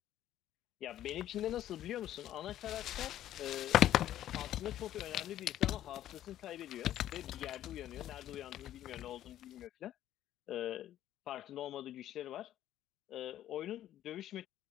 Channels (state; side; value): quieter; right; 12.4 dB